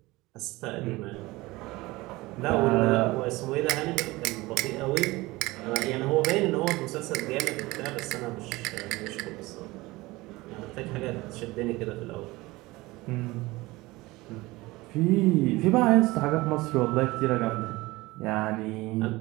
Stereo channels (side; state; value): left; quieter; 20.8 dB